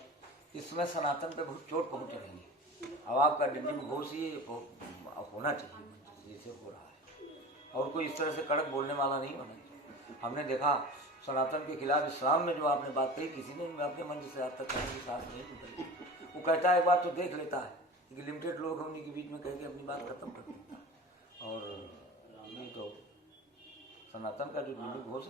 इसमें सनातन पे बहुत चोट पहुंच रही है। अब आपका दिल्ली में घोष ये होना चाहिए जैसे हो रहा है, और कोई इस तरह से कड़क बोलने वाला नहीं होना चाहिए। हमने देखा सनातन के खिलाफ इस्लाम में जो आपने बात कही, किसी ने अपने मंच से आज तक कहने की साथ नहीं निकली। वो कहता है एक बात तो देख लेता है कि लिमिटेड लोग हैं, उन्हीं के बीच में कह के अपनी बात खत्म कर देता है। और ये तो सनातन का जो दिल्ली घोष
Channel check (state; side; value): normal; both; correlation 0.35